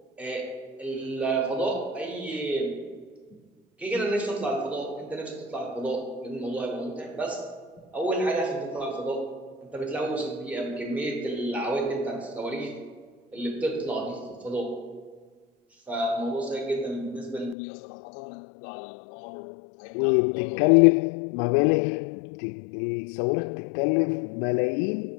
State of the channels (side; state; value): right; drops out; at 17.6 s